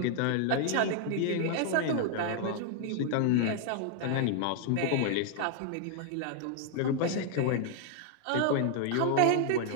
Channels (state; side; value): different; both; correlation 0.00